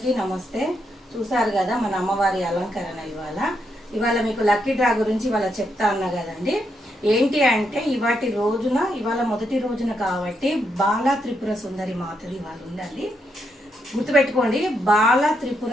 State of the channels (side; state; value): both; normal; correlation 0.80